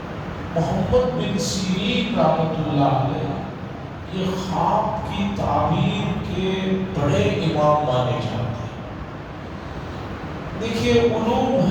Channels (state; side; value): identical; both; correlation 1.00